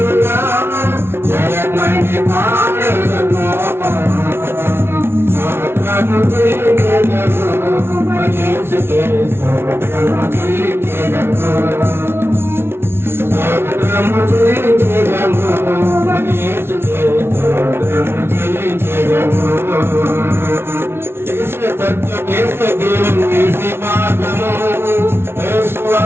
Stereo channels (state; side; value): late; left; 0.12 ms